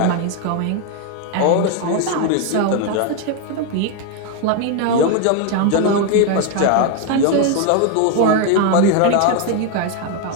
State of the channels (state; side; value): different; both; correlation 0.01